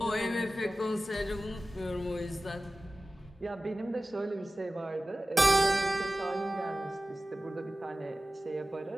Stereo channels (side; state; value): both; normal; correlation 0.95